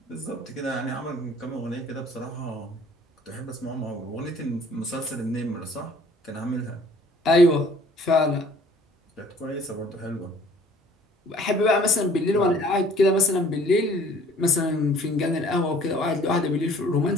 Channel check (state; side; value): normal; both; correlation 0.55